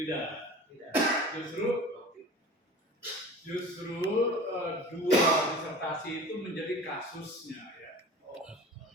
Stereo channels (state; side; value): normal; both; correlation 0.39